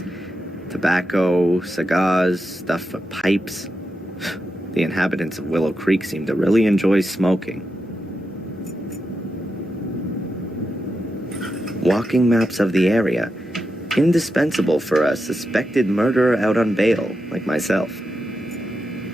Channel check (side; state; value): both; normal; correlation 0.87